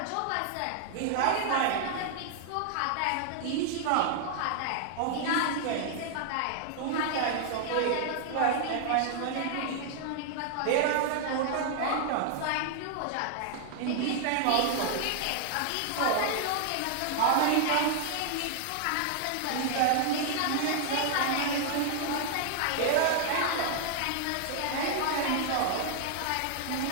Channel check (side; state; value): both; different; correlation 0.00